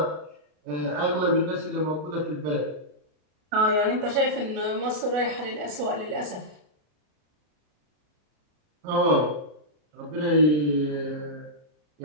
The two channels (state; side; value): late; left; 33 ms